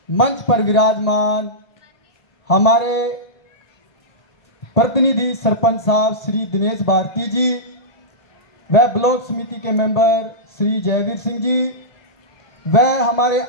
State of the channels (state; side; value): late; right; 1.8 ms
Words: मंच पर विराजमान हमारे प्रतिनिधि सरपंच साहब श्री दिनेश भारती जी व ब्लॉक समिति के मेंबर श्री जयवीर सिंह जी व हमारे